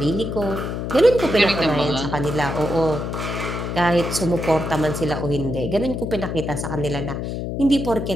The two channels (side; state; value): left; noise; hum, 4 dB below the sound